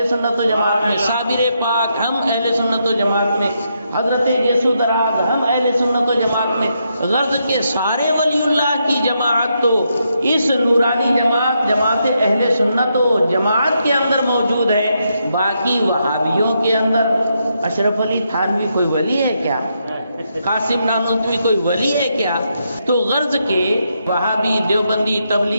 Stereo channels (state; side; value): inverted; both; correlation -0.80